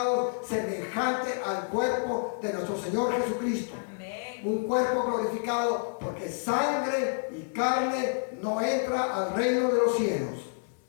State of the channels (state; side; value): silent; right; digital silence